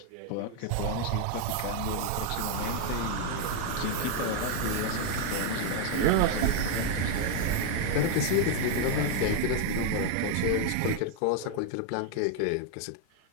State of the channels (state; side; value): different; both; correlation 0.00